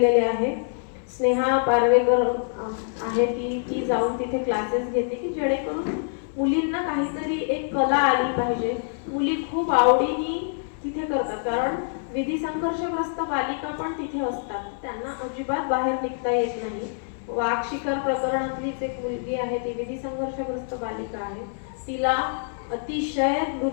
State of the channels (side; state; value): right; silent; 59 dB below the other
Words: आहे. स्नेहा पारवेकर आहे ती जाऊन तिथे क्लासेस घेते की जेणेकरून मुलींना काहीतरी एक कला आली पाहिजे. मुली खूप आवडीने तिथे करतात, कारण विधी संघर्षग्रस्त बालिका पण तिथे असतात, त्यांना अजिबात बाहेर निघता येत नाही. वाघ शिकार प्रकरणातलीच एक मुलगी आहे, ती विधी संघर्षग्रस्त बालिका आहे, तिला अतिशय